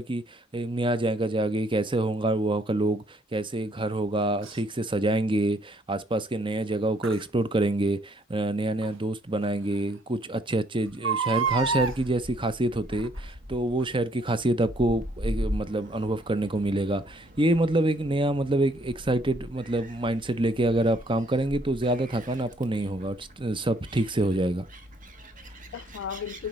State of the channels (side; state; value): both; normal; correlation 0.66